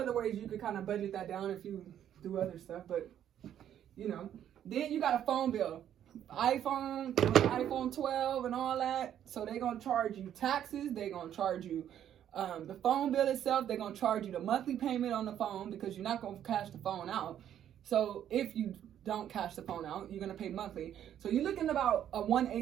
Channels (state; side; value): quieter; left; 10.3 dB